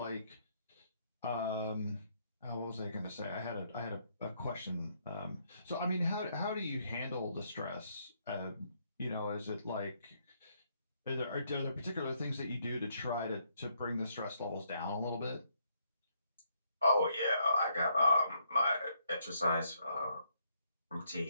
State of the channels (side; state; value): both; inverted; correlation -0.72